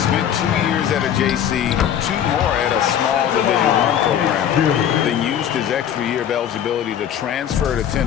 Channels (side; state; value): right; quieter; 9.6 dB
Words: 2 years at a JC, 2 more at a small Division I program. Then used his extra year of eligibility to transfer to